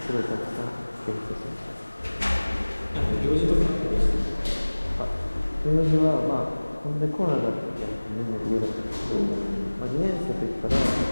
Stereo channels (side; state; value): both; inverted; correlation -1.00